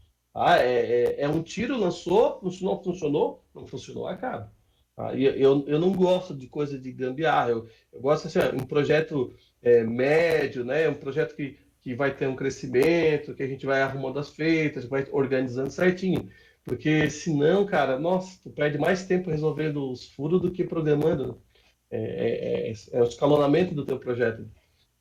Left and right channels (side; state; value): both; identical; correlation 1.00